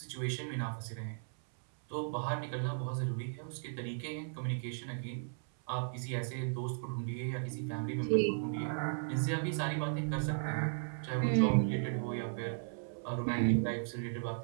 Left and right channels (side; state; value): left; silent; 54 dB below the other